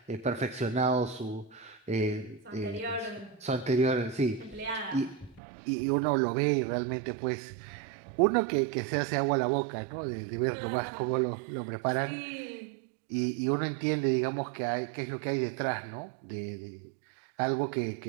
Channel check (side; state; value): left; drops out; at 5.4 s